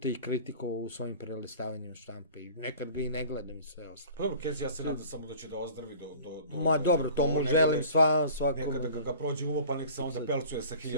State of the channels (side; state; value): both; inverted; correlation -0.44